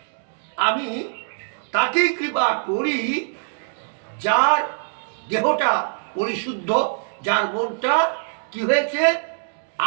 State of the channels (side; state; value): left; silent; digital silence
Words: আমি তাকেই কৃপা করি যার দেহটা পরিশুদ্ধ, যার মনটা কি হয়েছে